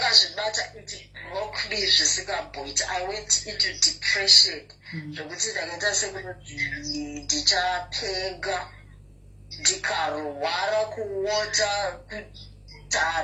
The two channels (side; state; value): both; identical; correlation 1.00